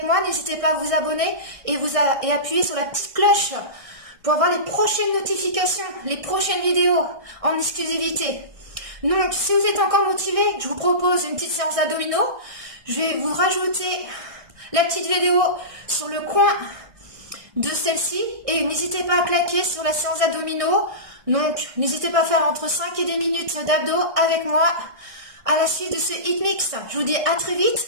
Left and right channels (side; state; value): left; late; 1.6 ms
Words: moi, n'hésitez pas à vous abonner et appuyer sur la petite cloche pour avoir les prochaines notifications, les prochaines vidéos en exclusivité. Donc, si vous êtes encore motivé, je vous propose une petite séance d'abdominaux. Je vais vous rajouter la petite vidéo sur le coin de celle-ci. Et n'hésitez pas à claquer sur la séance d'abdominaux. Donc, n'hésitez pas à faire entre 5 et 10 minutes d'abdos avec moi à la suite de ce HIIT Mix. Je vous dis à très vite,